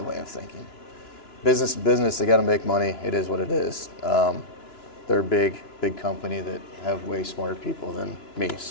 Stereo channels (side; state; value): right; late; 2.9 ms